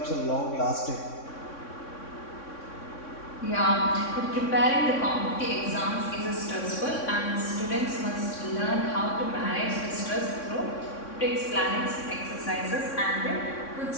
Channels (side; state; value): right; late; 3.6 ms